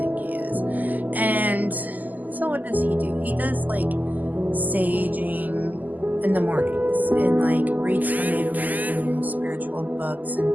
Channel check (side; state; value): left; late; 0.082 ms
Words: he is. And so what does he do? He does like saging in the mornings and like reads some Native American spiritual books,